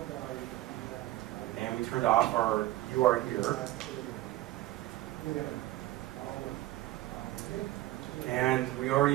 And we turned off our "you are here." And we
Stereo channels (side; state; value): left; quieter; 16.4 dB